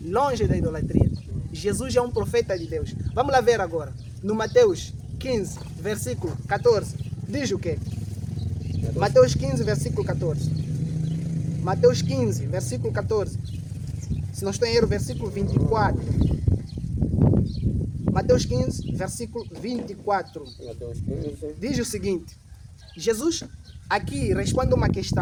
longe da idolatria. Jesus é um profeta de Deus. Vamos lá ver agora. No Mateus 15, versículo 14. Diz o quê? Mateus 15, versículo 14. Mateus 15, versículo 14. Se não estou em erro, versículo 24. Mateus 15, versículo 24. Mateus 15. Diz o seguinte. Jesus aqui responde uma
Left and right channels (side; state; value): both; identical; correlation 1.00